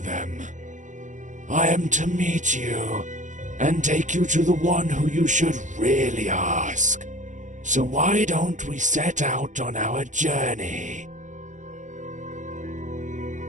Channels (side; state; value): left; late; 0.36 ms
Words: I am to meet you and take you to the one who you should really ask. So why don't we set out on our journey?